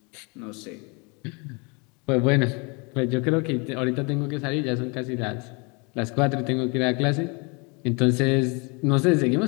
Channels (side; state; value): right; quieter; 31.3 dB